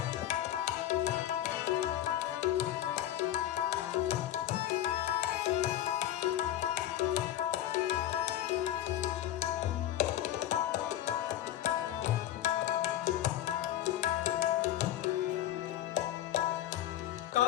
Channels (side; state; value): right; quieter; 12.5 dB